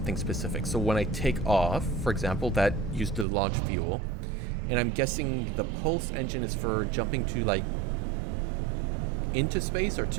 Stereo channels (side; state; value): left; drops out; at 3.2 s